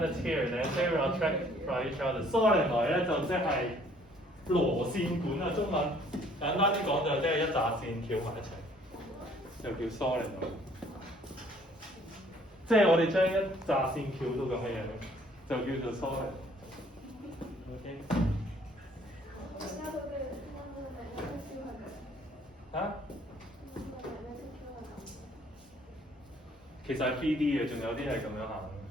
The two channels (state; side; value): normal; both; correlation 0.60